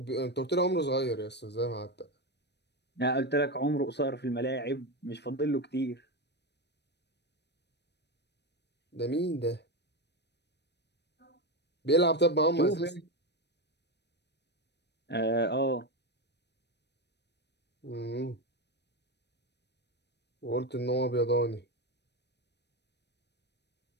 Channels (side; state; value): right; late; 0.50 ms